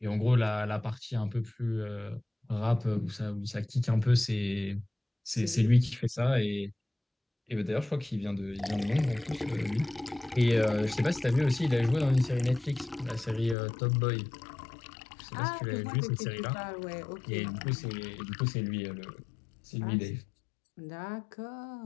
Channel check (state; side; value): drops out; right; at 13.6 s